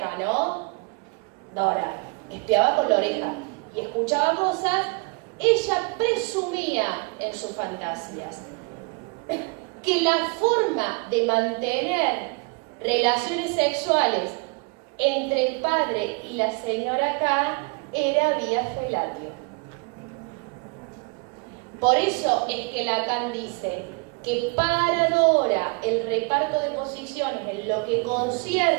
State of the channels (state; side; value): quieter; left; 31.9 dB